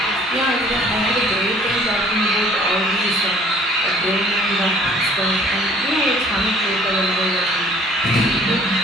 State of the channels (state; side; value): normal; both; correlation 0.55